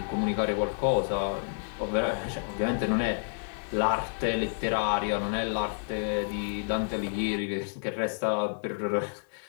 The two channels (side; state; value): right; silent; 58 dB below the other